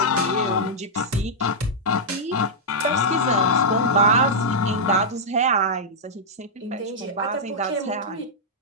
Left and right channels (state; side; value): normal; both; correlation -0.08